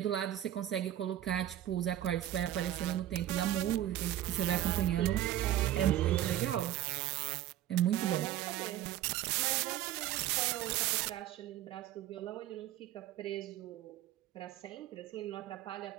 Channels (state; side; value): quieter; left; 12.7 dB